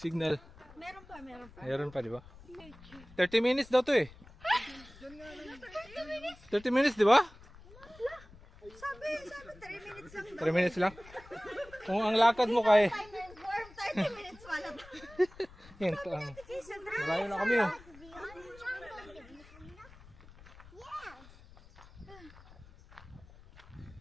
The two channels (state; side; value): noise; left; rumble, 21 dB below the sound